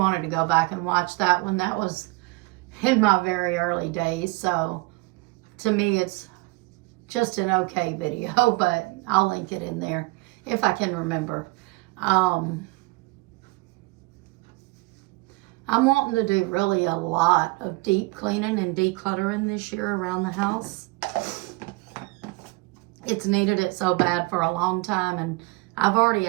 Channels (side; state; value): left; quieter; 24.6 dB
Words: to go back and watch that one, that was in my very early days. So to me, it's just an okay video, but I'll link it in there if I can remember. I'm wanting to do really a lot of deep cleaning and decluttering this year around the house. It's needed it so bad for a long time, and I've already